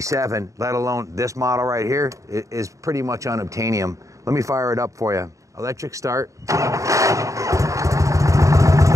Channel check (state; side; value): late; left; 0.16 ms